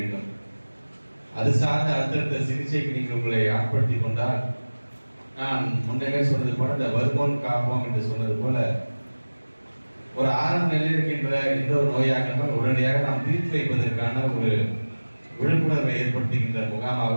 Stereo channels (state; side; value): inverted; both; correlation -1.00